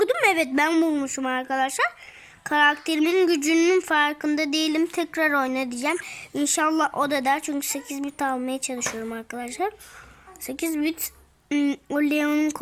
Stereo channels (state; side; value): identical; both; correlation 1.00